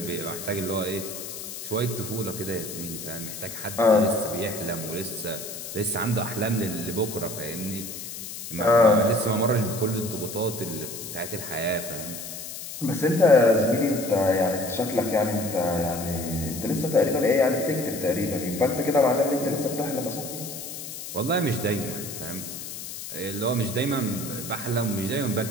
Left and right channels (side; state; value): left; noise; hiss, 9 dB below the sound